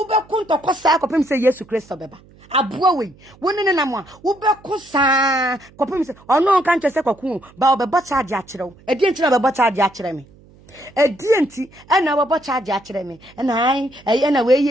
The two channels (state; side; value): noise; right; hum, 26 dB below the sound